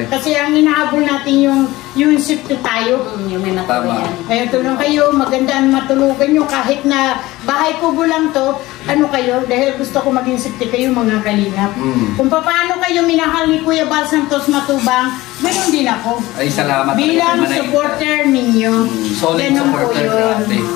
Kasi ang inahabol natin yung safety tayo. Yung may Tama. matuluyan. Kaya tulong kayo, maganda ang matulugan nyo kahit na bahay kubo lang to, kayo, dahil gusto ko maging safety kayo mga kalingap. Kung paano kayo minahal ni Kuya Bal Santos Matubang, ganoon din ako. Ay, salamat. Bilang Manay. supporter ninyo. Solid Ganun po supporter yun. natin.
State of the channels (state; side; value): quieter; right; 18.6 dB